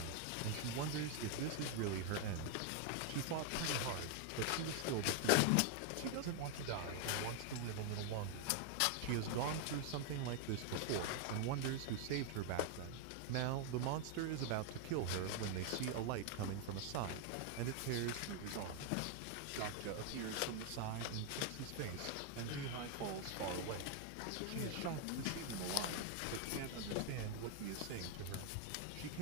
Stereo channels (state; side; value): different; both; correlation 0.00